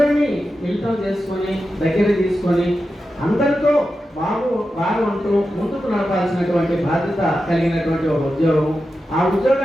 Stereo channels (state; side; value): normal; both; correlation 0.91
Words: మిళితం చేసుకొని దగ్గర తీసుకొని అందరితో బాగు అంటూ ముందుకు నడపాల్సినటువంటి బాధ్యత కలిగినటువంటి ఒక ఉద్యోగం. ఆ